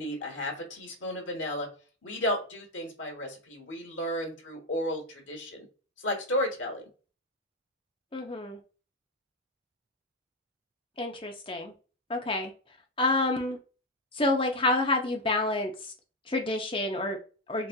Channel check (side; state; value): both; normal; correlation 0.07